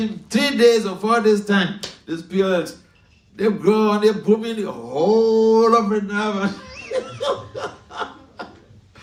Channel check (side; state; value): both; identical; correlation 1.00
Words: 3 days or 4 days' time, these pearls, they've grown, they're booming the whole of Vrindavan.